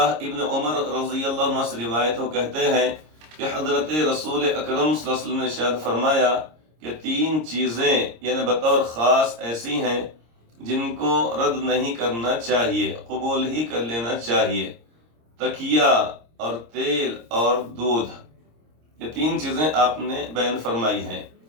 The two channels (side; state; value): left; late; 26 ms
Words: ابن عمر رضی اللہ عنہ سے روایت ہو کہتے ہیں کہ حضرت رسول اکرم صلی اللہ علیہ وسلم نے ارشاد فرمایا کہ تین چیزیں یعنی بطور خاص ایسی ہیں جن کو رد نہیں کرنا چاہیے، قبول ہی کر لینا چاہیے: تکیہ اور تیل اور دودھ. یہ تین چیزیں آپ نے بیان فرمائی ہیں.